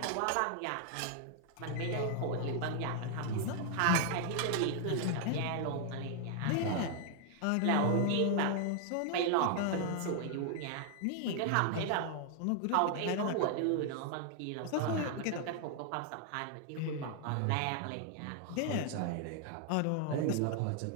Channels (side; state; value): both; different; correlation 0.00